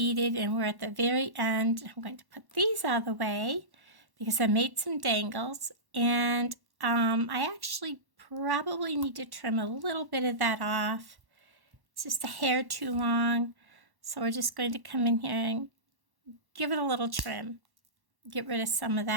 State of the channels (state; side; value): late; left; 1.1 ms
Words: and we're at the very end. I'm going to put these out of the way because I made some dangles, and I actually probably need to trim a little bit of that off. It's just a hair too long. So we're just going to come in here and give it a little trim. Get rid of some of